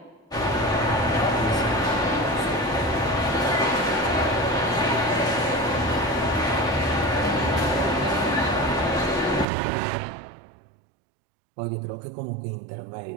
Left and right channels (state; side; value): drops out; left; at 9.5 s